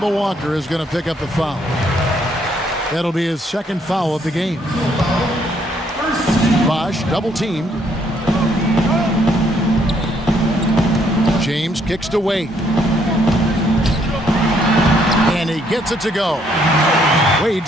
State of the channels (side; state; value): both; normal; correlation 0.69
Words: Walker is going to pick up the foul. That'll be his second foul of the game. Bosch double-teamed. James kicks to Wade. And he gets it to go.